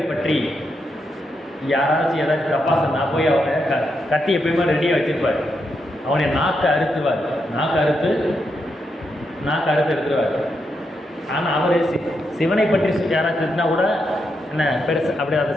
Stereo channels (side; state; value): both; normal; correlation 0.82